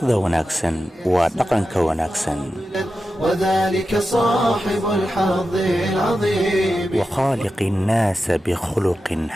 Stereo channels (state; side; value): normal; both; correlation 0.91